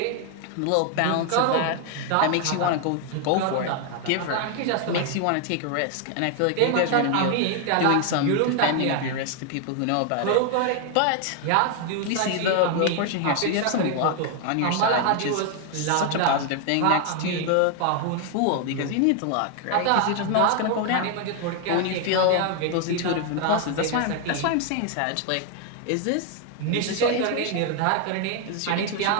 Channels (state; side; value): different; both; correlation 0.00